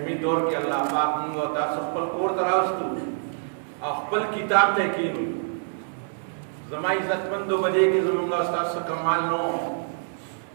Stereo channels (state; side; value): silent; left; 61 dB below the other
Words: दौर के अल्लाह पाक मुंग और तास खपल कोर तरास्तु खपल किताब तहकीर ज़मा इज़्ज़तमंद बजे की ज़मुंगा तास कमाल नो